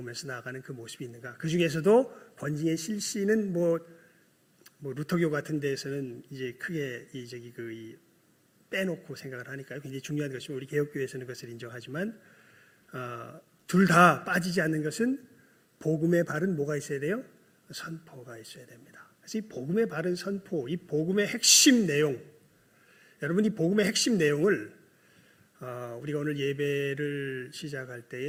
나아가는 그 모습이 있는가. 그 중에서도 권징의 실시는 뭐 루터교 같은 데에서는 이제 크게 빼놓고 생각을 하니까요. 굉장히 중요한 것이고 우리 개혁교회에서는 그것을 인정하지만 둘 다 빠지지 않는 것은 복음의 바른 뭐가 있어야 돼요? 선포가 있어야 됩니다. 그래서 이 복음의 바른 선포, 이 복음의 핵심 내용, 여러분 이 복음의 핵심 내용을 우리가 오늘 예배를 시작할 때에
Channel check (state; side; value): identical; both; correlation 1.00